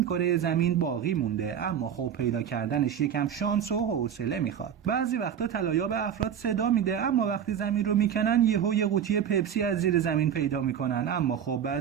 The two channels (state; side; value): quieter; left; 8.6 dB